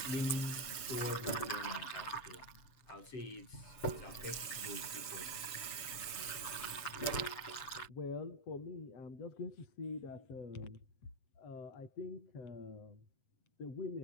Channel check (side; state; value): right; late; 7.7 ms